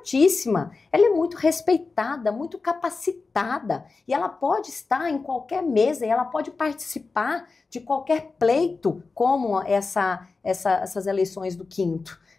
ela é muito respeitada, muito capacitada e ela pode estar em qualquer mesa e ela pode participar de qualquer pleito como essas eleições do 5º.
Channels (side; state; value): right; quieter; 4.1 dB